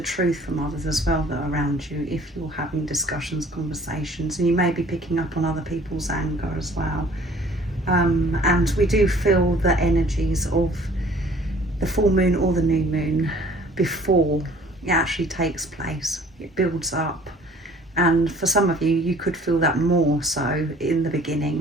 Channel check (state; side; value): normal; both; correlation 0.53